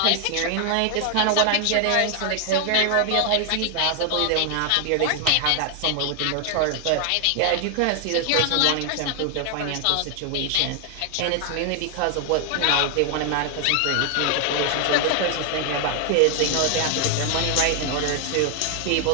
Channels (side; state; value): both; different; correlation 0.00